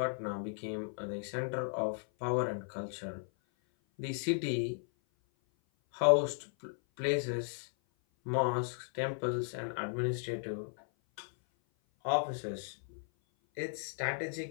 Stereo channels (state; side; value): silent; right; 54 dB below the other